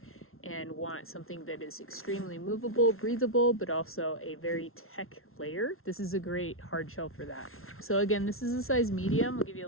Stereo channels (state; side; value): late; right; 0.62 ms